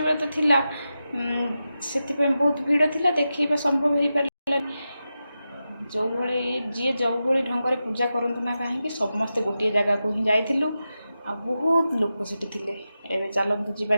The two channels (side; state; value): both; inverted; correlation -0.91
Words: व्रत थिला से बहुत भीड़ थिला देखा संभव हो पारा जो भाई जी जो भाई ढंग से पूजा करतु ना कहीं समस्ते गोटे जगह को ही जाइलु आ बहुत लोग से एवं चलतु जा